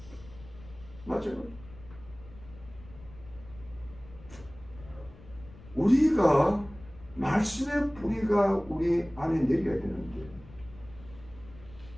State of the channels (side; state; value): left; noise; rumble, 19 dB below the sound